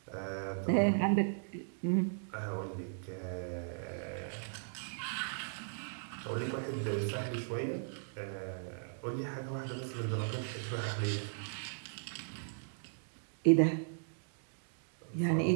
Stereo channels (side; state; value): left; silent; digital silence